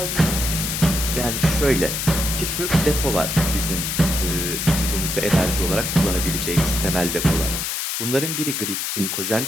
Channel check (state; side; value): noise; left; hiss, 2 dB below the sound